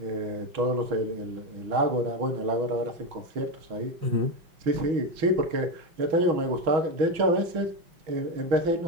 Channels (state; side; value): late; left; 6.2 ms